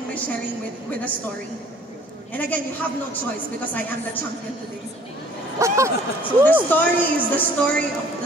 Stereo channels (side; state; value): both; normal; correlation 0.55